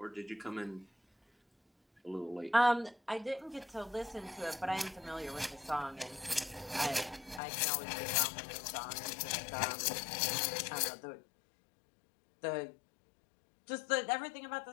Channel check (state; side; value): drops out; right; at 7.4 s